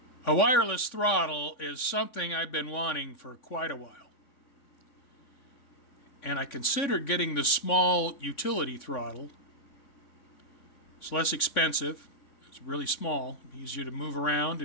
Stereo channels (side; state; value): right; late; 3.6 ms